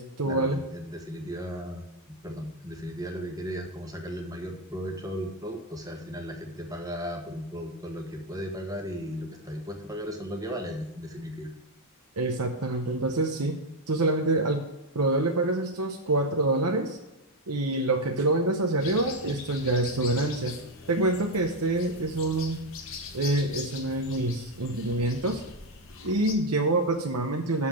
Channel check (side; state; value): both; normal; correlation 0.06